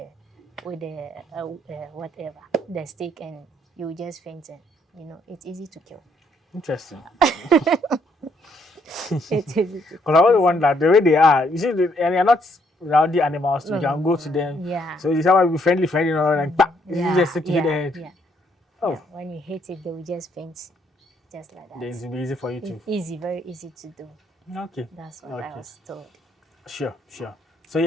whatever the stick, and you will just faint. And it's easy to kill. Interesting. It's easy to. Because I always wonder the way they are. You see, and they're not rowdy animals. So you can go to them. Yeah. So you someone be friendly, and bah, you just stick to hit the head. Yeah. Oh. Yeah. When you hit it, they will just faint, just like that. Then it will be easy for you to. It's easy, very easy to do. Okay. That's what I was told. Sure. So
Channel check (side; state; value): both; normal; correlation 0.71